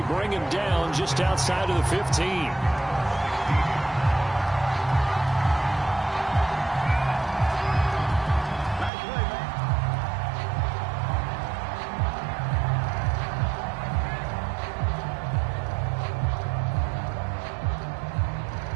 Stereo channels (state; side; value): drops out; left; at 8.9 s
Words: bring him down just outside of the 15.